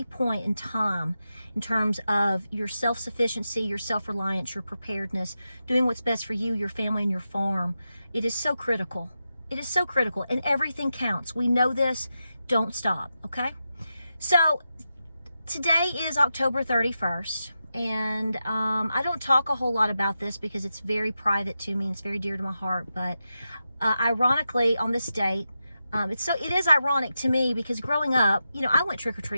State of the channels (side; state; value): both; inverted; correlation -0.89